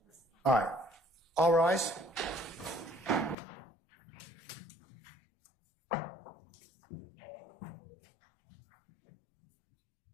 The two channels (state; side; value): drops out; right; at 3.4 s